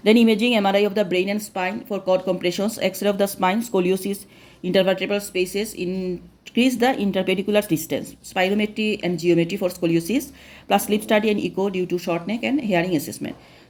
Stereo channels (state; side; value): identical; both; correlation 1.00